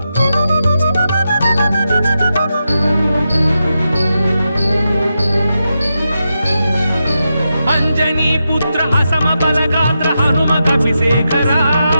అంజనీ పుత్ర అసమ బలగాత్ర హనుమ కపిశేఖరా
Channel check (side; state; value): both; inverted; correlation -0.87